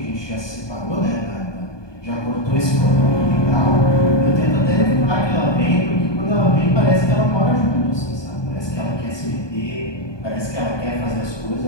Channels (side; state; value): right; late; 1.2 ms